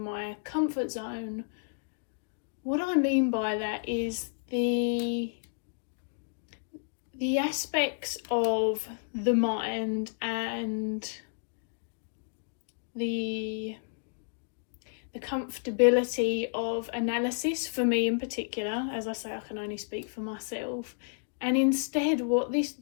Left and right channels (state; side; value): silent; right; digital silence